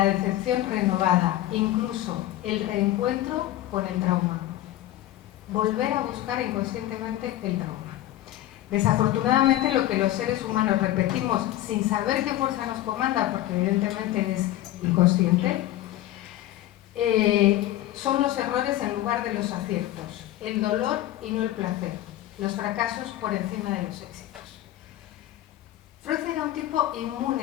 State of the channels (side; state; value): right; quieter; 14.4 dB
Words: decepción renovada, incluso el reencuentro con el trauma. Volver a buscar inconscientemente el trauma. Desafortunadamente lo que los seres humanos repetimos sin saber qué fuerza nos comanda, porque evidentemente es inconsciente, son los errores en lugar de los aciertos, el dolor y no el placer, los fracasos por encima de los éxitos. Freud era un tipo inmune